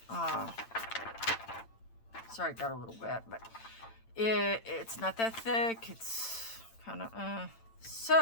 Sorry, it got a little wet, but it's not that thick. It's kind of,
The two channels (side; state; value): right; late; 8.8 ms